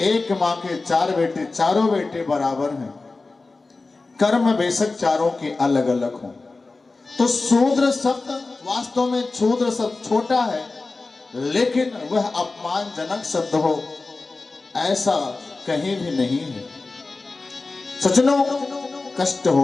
मां के चार बेटे, चारों बेटे बराबर हैं, कर्म बेशक चारों के अलग अलग हों। तो शूद्र शब्द वास्तव में शूद्र शब्द छोटा है, लेकिन वह अपमानजनक शब्द हो ऐसा कहीं भी नहीं है। सज्जनों, कष्ट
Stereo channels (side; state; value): right; quieter; 3.6 dB